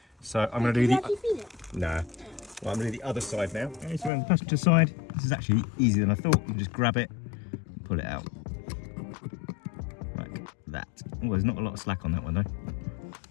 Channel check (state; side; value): drops out; right; at 4.1 s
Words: So I'm going to do the. No. Well, I'm going to do the other side now. Okay, so on the passenger side, this is actually easier than I thought. You can just grab it, and pull it out, like that. Oh, there's not a lot of slack on that one though.